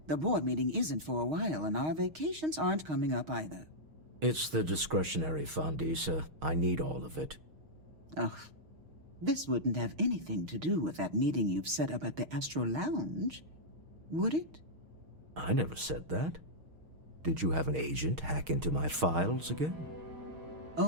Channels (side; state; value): left; late; 6.4 ms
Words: The board meeting isn't for a while, and our vacations aren't coming up either. It's the discretionary fund, Issa. I need all of it. Ugh. This wouldn't have anything to do with that meeting you've set up at the Astral Lounge, would it? I never said that. Did you have an agent hack into my files again?